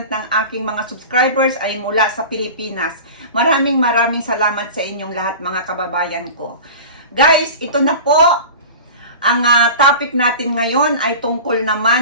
ng aking mga subscribers ay mula sa Pilipinas. Maraming salamat sa inyong lahat mga kababayan ko. Guys, ito na po. Ang topic natin ngayon ay tungkol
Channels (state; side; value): inverted; both; correlation -0.35